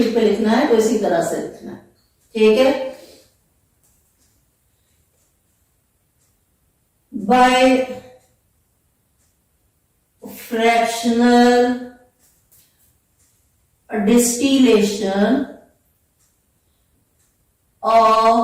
पे लिखना है तो इसी तरह से लिखना है, ठीक है। By fractional distillation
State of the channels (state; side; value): identical; both; correlation 1.00